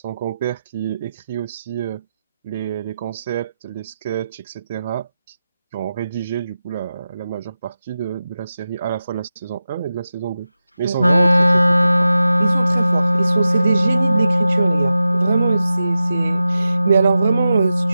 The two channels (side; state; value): both; inverted; correlation -0.92